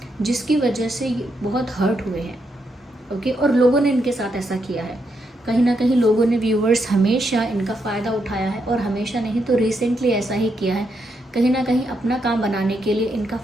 जिसकी वजह से बहुत हर्ट हुए हैं, ओके। और लोगों ने इनके साथ ऐसा किया है, कहीं ना कहीं लोगों ने, व्यूअर्स, हमेशा इनका फ़ायदा उठाया है, और हमेशा नहीं तो रिसेंटली ऐसा ही किया है, कहीं ना कहीं अपना काम बनाने के लिए इनका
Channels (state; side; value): normal; both; correlation 0.80